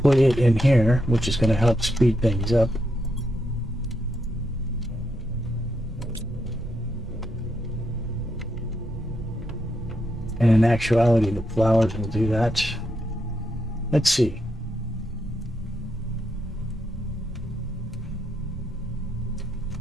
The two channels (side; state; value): both; normal; correlation 0.81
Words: put it in here, which is going to help speed things up. And in actuality, the flowers will do that. Let's see.